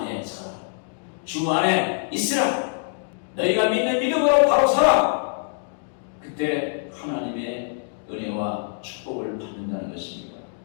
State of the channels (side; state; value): right; silent; digital silence